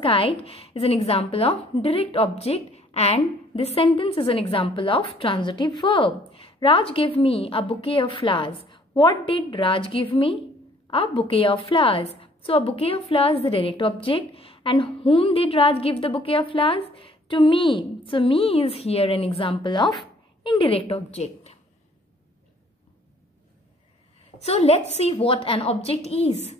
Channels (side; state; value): both; normal; correlation 0.59